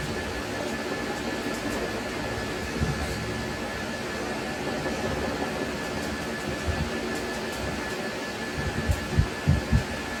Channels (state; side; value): identical; both; correlation 1.00